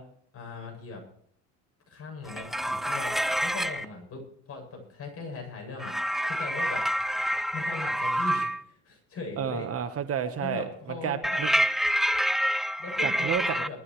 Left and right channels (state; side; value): normal; both; correlation 0.77